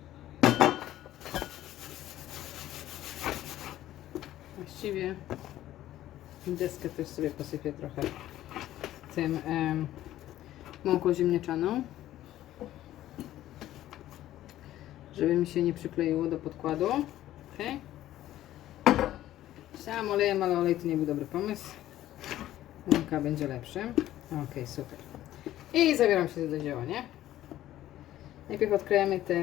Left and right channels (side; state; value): right; quieter; 13.7 dB